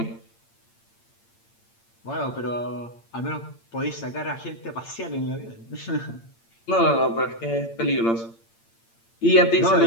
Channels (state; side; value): late; right; 8.8 ms